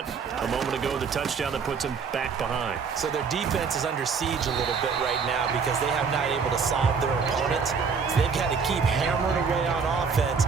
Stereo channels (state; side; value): quieter; left; 5.7 dB